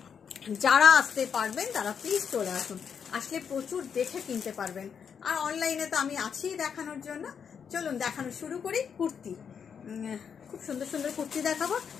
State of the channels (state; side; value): quieter; right; 7.1 dB